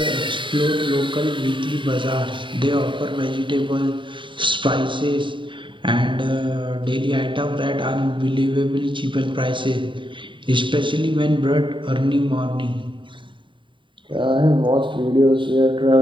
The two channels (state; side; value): late; left; 0.24 ms